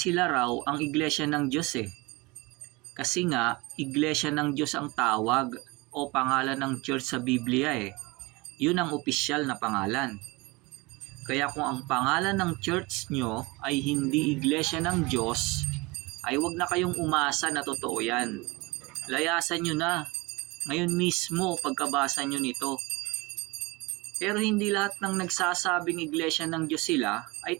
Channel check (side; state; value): left; quieter; 24.5 dB